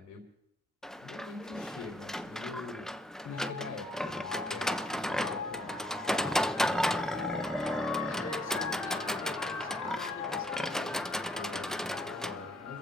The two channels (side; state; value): both; normal; correlation 0.69